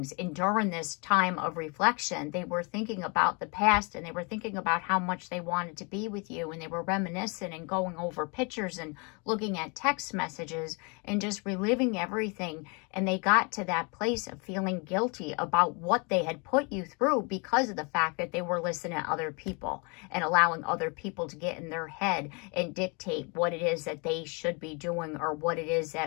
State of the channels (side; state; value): right; quieter; 32.0 dB